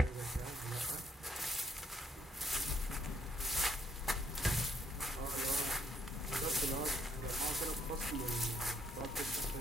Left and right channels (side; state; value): both; normal; correlation 0.70